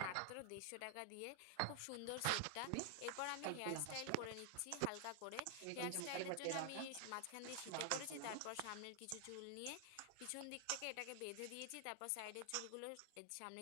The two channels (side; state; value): both; different; correlation 0.00